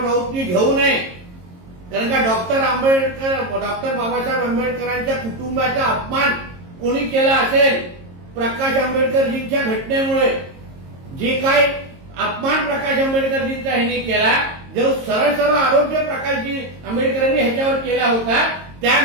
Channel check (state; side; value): late; left; 22 ms